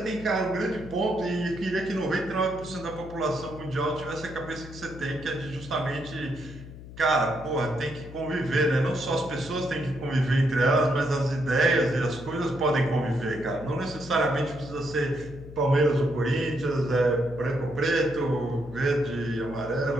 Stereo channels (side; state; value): left; noise; hum, 14 dB below the sound